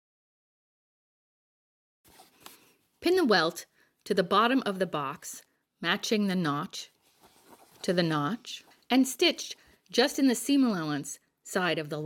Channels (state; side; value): identical; both; correlation 1.00